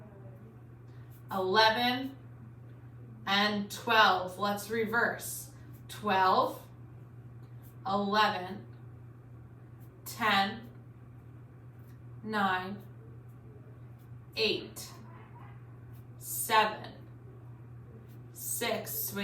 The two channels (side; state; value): both; identical; correlation 1.00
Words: 11, and 12. Let's reverse. 12, 11, 10, 9, 8, 7, 6,